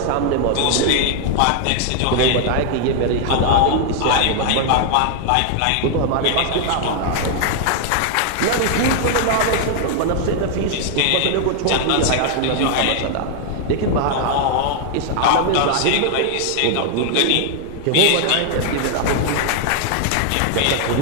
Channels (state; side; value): different; both; correlation 0.00